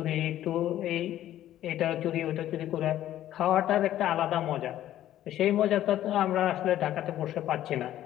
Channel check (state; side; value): quieter; right; 12.7 dB